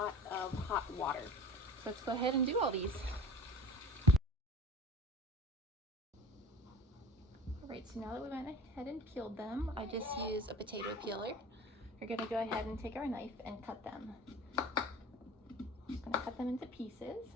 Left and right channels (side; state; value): both; normal; correlation 0.41